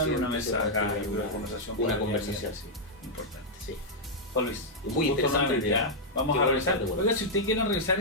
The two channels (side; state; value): both; normal; correlation -0.05